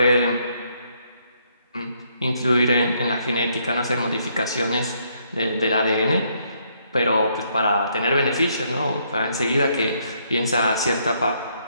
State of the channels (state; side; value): inverted; both; correlation -0.71